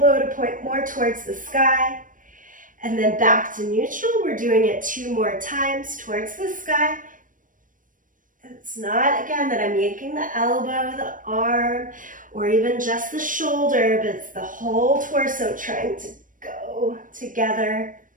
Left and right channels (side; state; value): left; late; 0.38 ms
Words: to point more towards the sky. And then back to neutral. We're doing it 2 more times towards the sky. It's not, again, that I'm yanking the elbow, the arm, or even just the shoulder, but it's the whole torso trying to go together